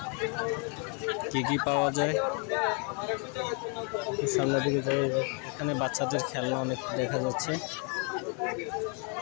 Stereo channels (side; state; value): right; quieter; 36.9 dB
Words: কি কি পাওয়া যায়। সামনের দিকে যাই, এখানে বাচ্চাদের খেলনা অনেক দেখা যাচ্ছে,